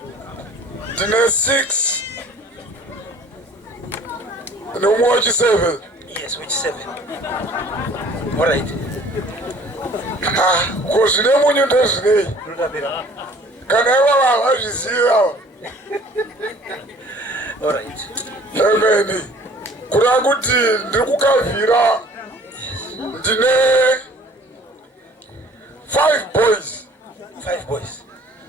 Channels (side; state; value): both; normal; correlation 0.52